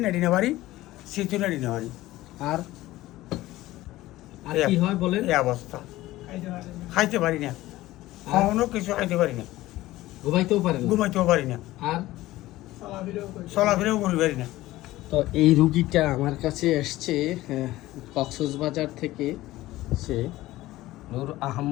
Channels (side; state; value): right; quieter; 16.9 dB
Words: নেড়ি নেবারি শীত নেড়ি নেবারি। আর আর কি হয় বলেন? এই অবস্থা খাইতে পারি না, খাওয়ানো কিছু খাইতে পারি না, ঘুমাইতেও পারেন না? ঘুমাইতেও পারি না, আর চলাফেরাও করি পারি না। তো এই রুগীটা আমার কাছে এসছে কক্সবাজার থেকে। সে নূর